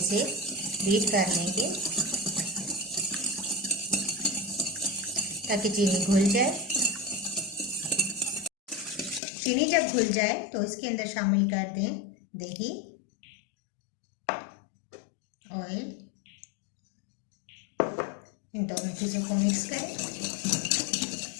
से बीट कर लेंगे ताकि चीनी घुल जाए। चीनी जब घुल जाए तो इसके अंदर शामिल कर दें दही, ऑयल, इन दोनों चीज़ों को मिक्स करें।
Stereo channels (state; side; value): drops out; right; at 9.2 s